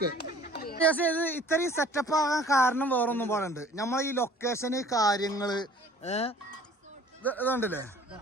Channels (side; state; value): both; normal; correlation 0.51